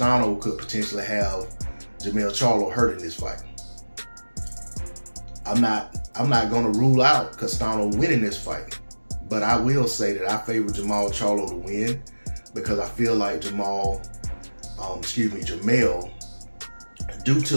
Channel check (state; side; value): inverted; both; correlation -1.00